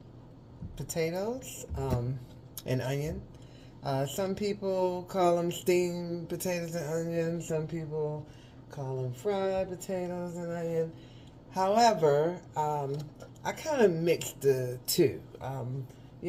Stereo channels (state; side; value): identical; both; correlation 1.00